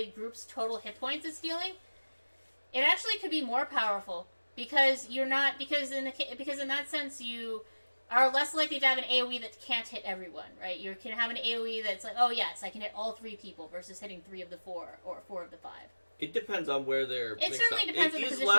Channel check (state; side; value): inverted; both; correlation -1.00